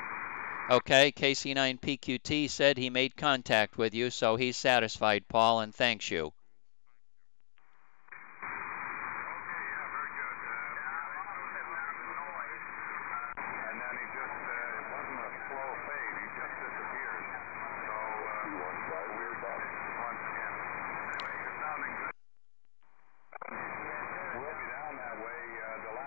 Okay, KC9PQT said he made contact with you, so he's satisfied, Paul, and thanks you.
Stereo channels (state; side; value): silent; right; digital silence